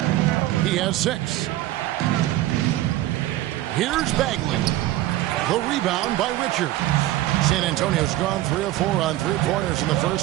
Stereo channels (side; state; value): left; quieter; 15.5 dB